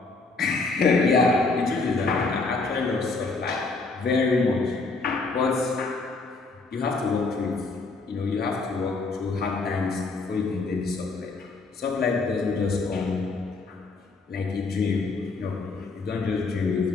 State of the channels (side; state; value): right; quieter; 3.8 dB